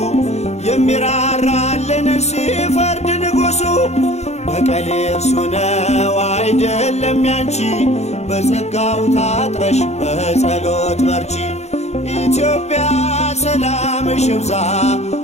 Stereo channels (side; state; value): right; late; 0.32 ms